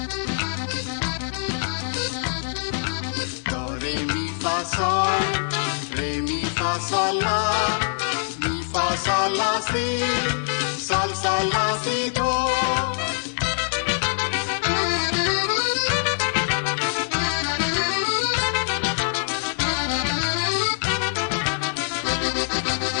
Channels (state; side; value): silent; right; 63 dB below the other